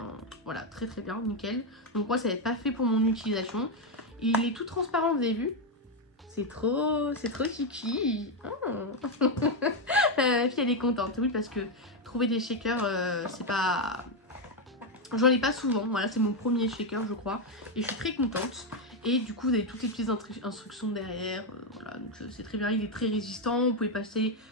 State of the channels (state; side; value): normal; both; correlation 0.05